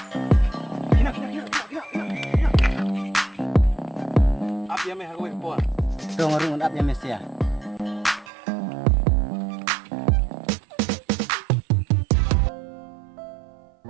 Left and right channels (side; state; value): left; drops out; at 8.3 s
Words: Apa yang meh aku buat? Tuh ngarung up ya mesti ya.